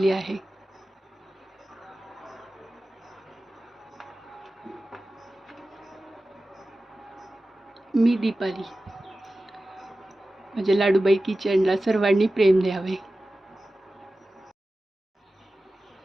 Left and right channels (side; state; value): both; normal; correlation 0.95